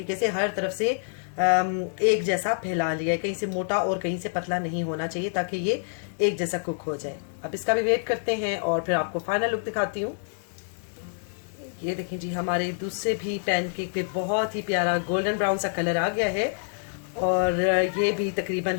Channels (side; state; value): right; silent; digital silence